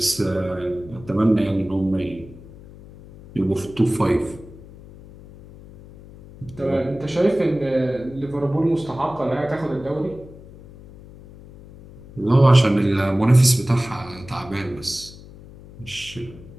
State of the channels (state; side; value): noise; left; hum, 19 dB below the sound